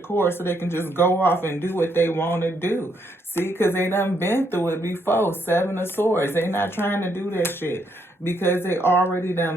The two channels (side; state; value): both; normal; correlation 0.74